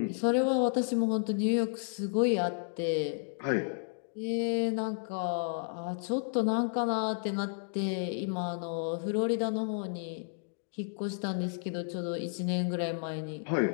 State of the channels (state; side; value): silent; right; digital silence